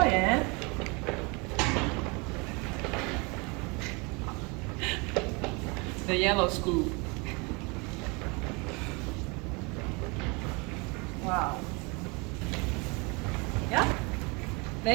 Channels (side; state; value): left; quieter; 29.1 dB